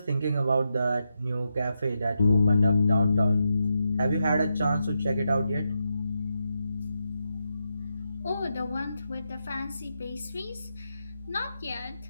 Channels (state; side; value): inverted; both; correlation -0.85